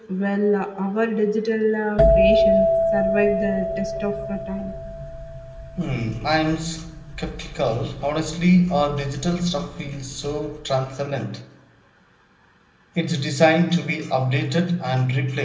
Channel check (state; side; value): identical; both; correlation 1.00